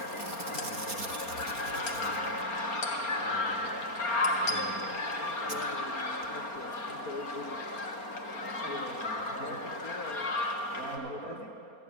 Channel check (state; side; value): late; right; 4.3 ms